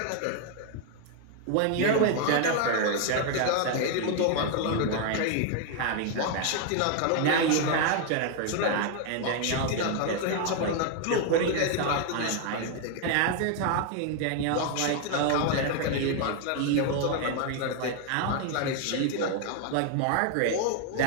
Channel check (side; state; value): both; different; correlation 0.01